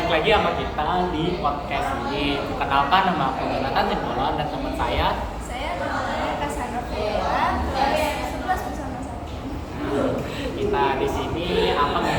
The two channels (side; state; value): both; identical; correlation 1.00